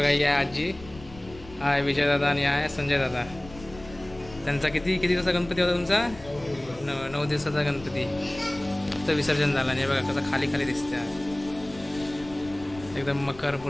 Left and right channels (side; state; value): left; noise; rumble, 18 dB below the sound